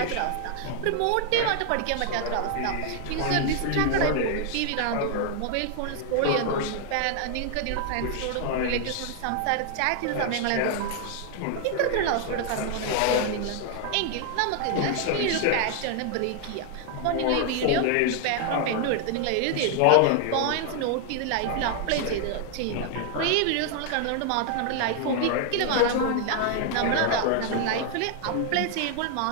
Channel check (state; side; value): different; both; correlation 0.00